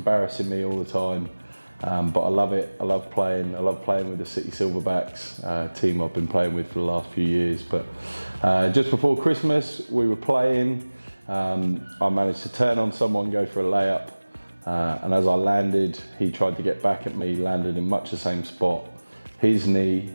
me all the time. But I love it. I love playing. I love playing with the City Silverbacks, team I've been playing with for the last few years. But just before Christmas, we were playing. I managed to turn on someone, go for a layup. And as I landed, he tried to get back at me, landed in much the same spot. His knee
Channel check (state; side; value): inverted; both; correlation -1.00